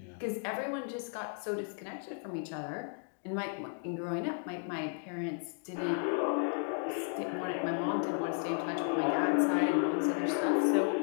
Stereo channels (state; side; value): silent; right; 55 dB below the other